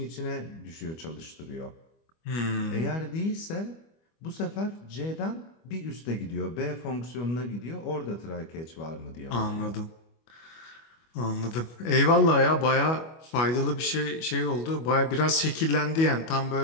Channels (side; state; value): right; late; 25 ms